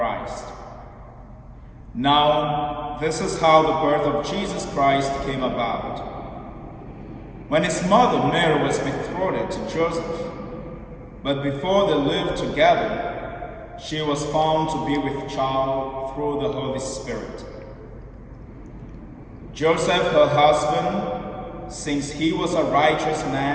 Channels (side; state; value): both; identical; correlation 1.00